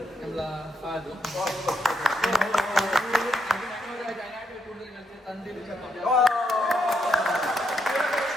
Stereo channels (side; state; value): both; normal; correlation 0.79